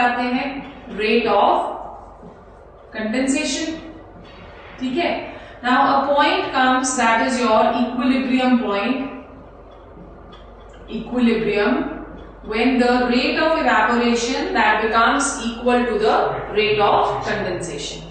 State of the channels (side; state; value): both; identical; correlation 1.00